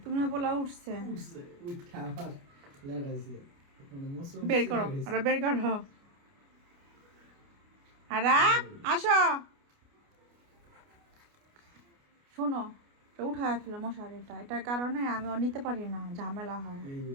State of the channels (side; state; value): left; late; 29 ms